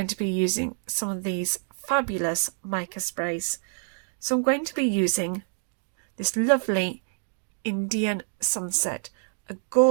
to be using some of these fabulous mica sprays. So I'm going to be using this lovely Indian sunset, a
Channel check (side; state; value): left; silent; 60 dB below the other